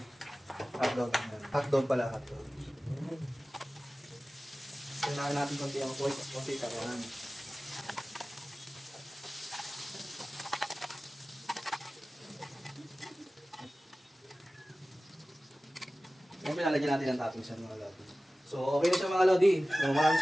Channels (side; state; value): both; normal; correlation 0.96